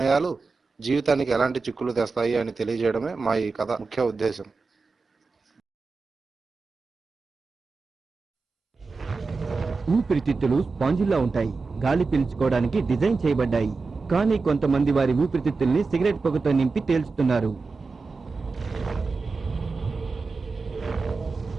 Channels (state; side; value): quieter; left; 4.2 dB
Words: జీవితానికి ఎలాంటి చిక్కులు తెస్తాయి అని తెలియజేయడమే మా ఈ కథ ముఖ్య ఉద్దేశం. ఊపిరితిత్తులు స్పాంజిల్లా ఉంటాయి. గాలి పీల్చుకోవడానికి డిజైన్ చేయబడ్డాయి. కానీ కొంతమంది వారి ఊపిరితిత్తుల్ని సిగరెట్ పొగతో నింపి తేల్చుతున్నారు.